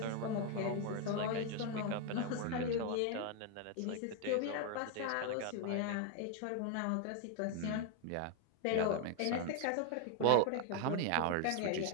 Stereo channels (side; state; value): both; different; correlation 0.00